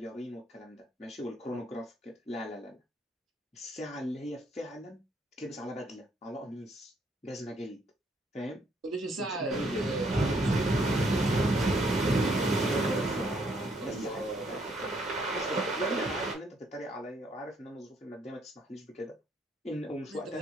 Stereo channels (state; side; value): normal; both; correlation 0.69